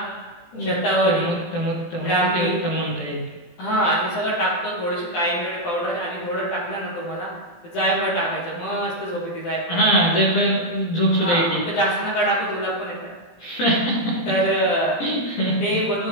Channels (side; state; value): right; late; 18 ms